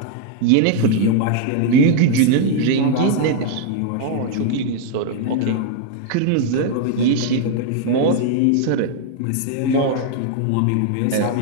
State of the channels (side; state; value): both; different; correlation 0.00